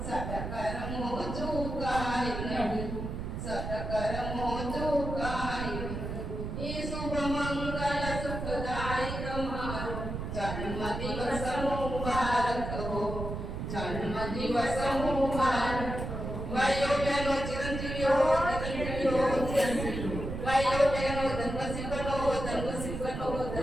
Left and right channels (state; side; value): noise; right; rumble, 5 dB below the sound